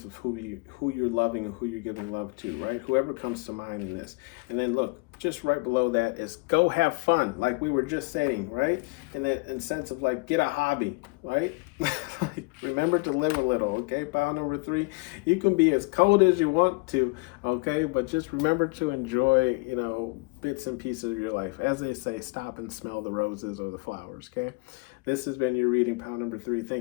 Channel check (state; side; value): quieter; right; 27.3 dB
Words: of who you're loving and who you're giving love to, right? Whoever comes to mind in this. And then look, just right below that is go have fun, like we were just saying, right? And that in sense of like get a hobby, right? Like, remember to live a little, okay? Pile number 3, you can be as cold as you want to, okay? But just remember to enjoy, bits and pieces of your life. As they say, stop and smell the roses or the flowers, okay? This has been your reading, pile number 3.